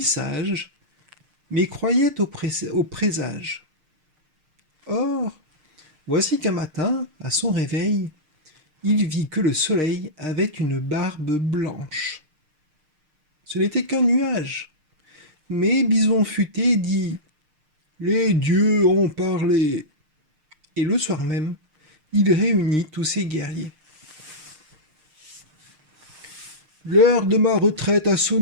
sage, mais croyait au présage. Or, voici qu'un matin, à son réveil, il vit que le soleil avait une barbe blanche. Ce n'était qu'un nuage, mais Bison futé dit « Les dieux ont parlé !» Et le soir même, il réunit tous ses guerriers. « L'heure de ma retraite a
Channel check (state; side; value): late; left; 6.5 ms